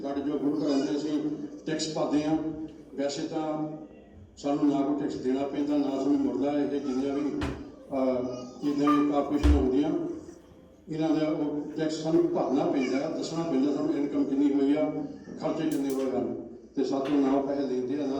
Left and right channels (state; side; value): identical; both; correlation 1.00